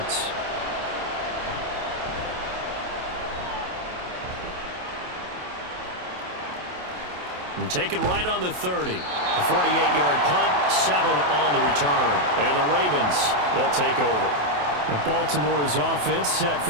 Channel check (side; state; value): left; late; 28 ms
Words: And taken right on the 30. A 48-yard punt, 7 on the return. And the Ravens, they'll take over. And Baltimore's offense set